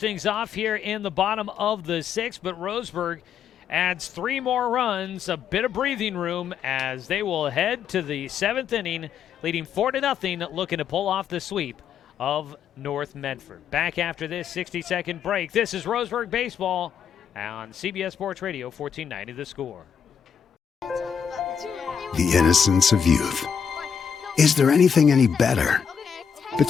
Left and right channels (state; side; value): quieter; right; 7.4 dB